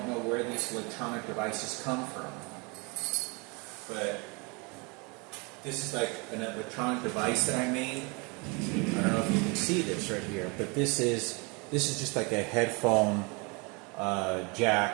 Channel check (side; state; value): left; quieter; 29.9 dB